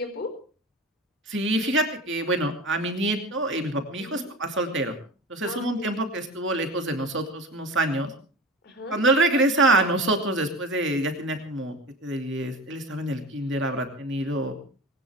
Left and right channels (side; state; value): both; normal; correlation 0.32